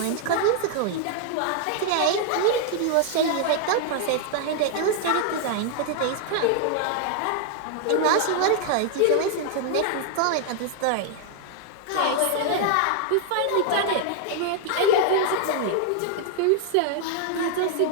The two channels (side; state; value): both; different; correlation 0.00